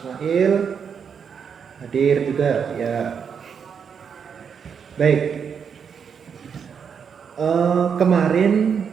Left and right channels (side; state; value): left; quieter; 6.9 dB